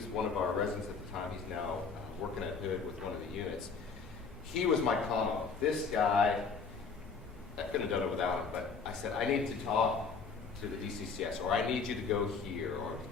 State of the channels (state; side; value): quieter; right; 5.1 dB